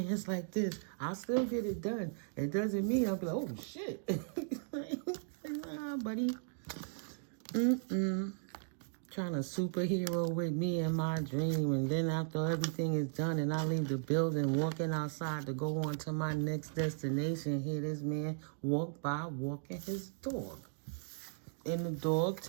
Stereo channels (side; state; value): left; silent; digital silence